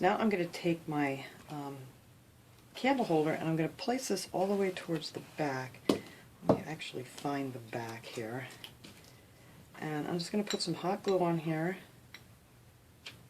now I'm going to take my candle holder, and I'm going to place this all the way towards the back. Let me actually find the back here. And I'm just going to put some hot glue on here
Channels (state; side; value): identical; both; correlation 1.00